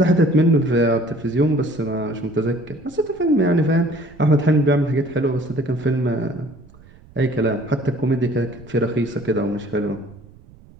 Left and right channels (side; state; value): right; noise; rumble, 24 dB below the sound